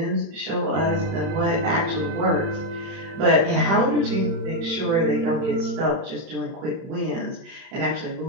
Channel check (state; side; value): late; left; 31 ms